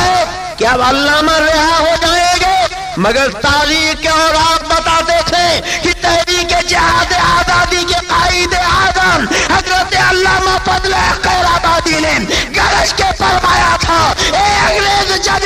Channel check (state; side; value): identical; both; correlation 1.00